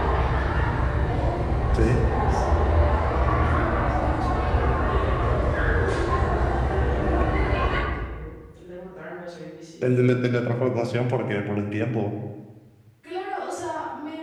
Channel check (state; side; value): identical; both; correlation 1.00